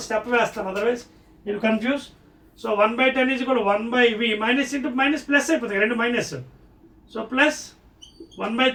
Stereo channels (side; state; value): both; identical; correlation 1.00